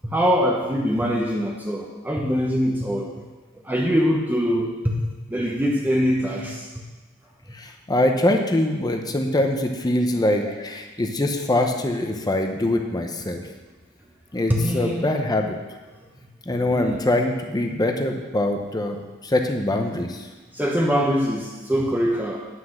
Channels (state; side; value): normal; both; correlation 0.73